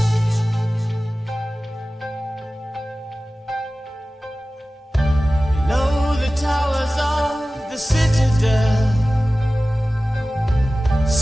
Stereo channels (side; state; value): both; normal; correlation 0.96